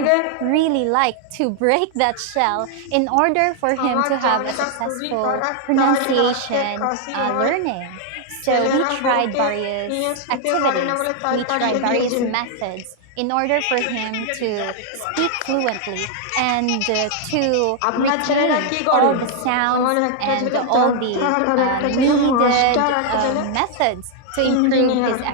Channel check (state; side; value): different; both; correlation 0.00